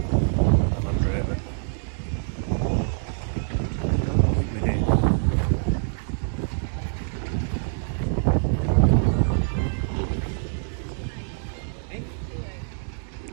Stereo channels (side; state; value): left; silent; 62 dB below the other